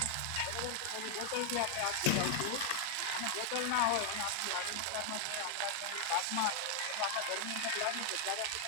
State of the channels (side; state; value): both; different; correlation 0.00